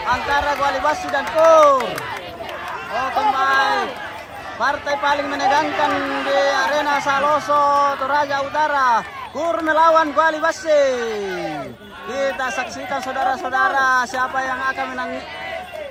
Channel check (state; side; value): identical; both; correlation 1.00